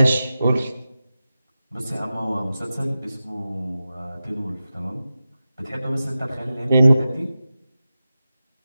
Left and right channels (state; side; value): inverted; both; correlation -0.93